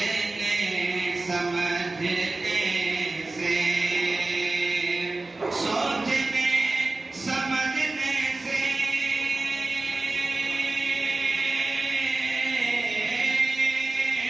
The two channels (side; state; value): left; quieter; 3.2 dB